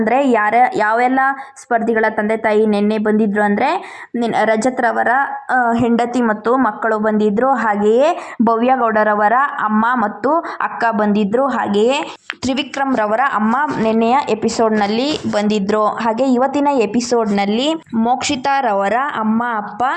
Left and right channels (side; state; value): both; identical; correlation 1.00